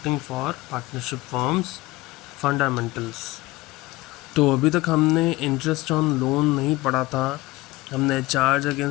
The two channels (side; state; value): right; quieter; 19.7 dB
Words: for partnership firms fundamentals. तो अभी तक हमने इंटरेस्ट ऑन लोन नहीं पढ़ा था, हमने चार्ज